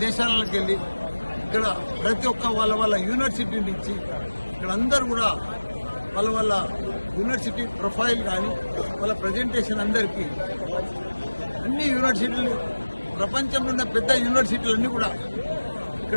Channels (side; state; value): both; inverted; correlation -1.00